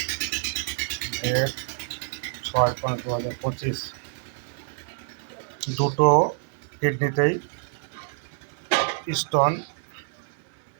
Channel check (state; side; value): silent; left; digital silence